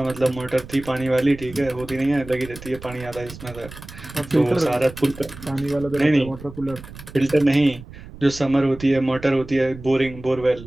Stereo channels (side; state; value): right; noise; rumble, 16 dB below the sound